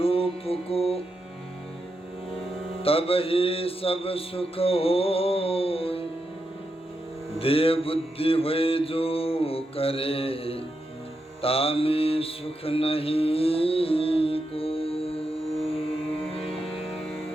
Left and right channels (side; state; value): both; normal; correlation 0.86